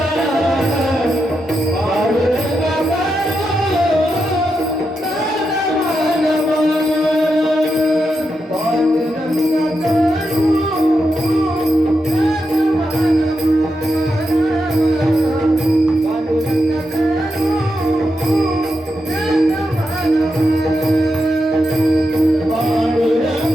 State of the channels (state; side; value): normal; both; correlation 0.86